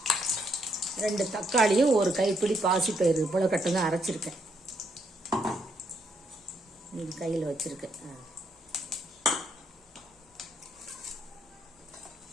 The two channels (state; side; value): normal; both; correlation 0.75